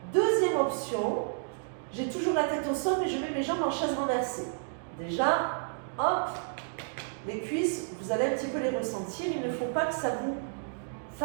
Deuxième option, j'ai toujours la tête au sol, mais je mets mes jambes en chaise renversée. Déjà, hop, les cuisses, vous allez un petit peu les ressentir. Il ne faut pas que ça vous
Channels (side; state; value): left; silent; digital silence